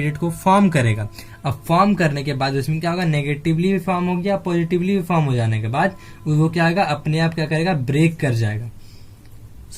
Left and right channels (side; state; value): both; identical; correlation 1.00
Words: को फॉर्म करेगा। अब फॉर्म करने के बाद उसमें क्या होगा, नेगेटिवली भी फॉर्म हो गया, पॉजिटिवली भी फॉर्म हो जाने के बाद वो क्या होगा, अपने आप क्या करेगा, ब्रेक कर जाएगा।